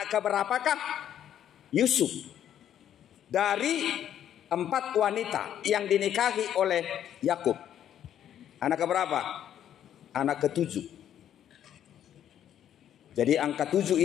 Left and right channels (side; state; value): right; quieter; 10.3 dB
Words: keberapakah Yusuf dari 4 wanita yang dinikahi oleh Yakub? Anak keberapa? Anak ke-7. Jadi angka 7